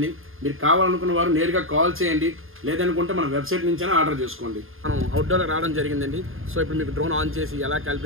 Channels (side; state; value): left; late; 0.60 ms